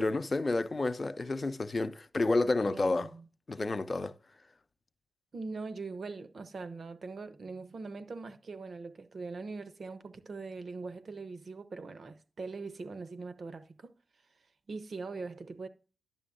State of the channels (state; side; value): normal; both; correlation 0.95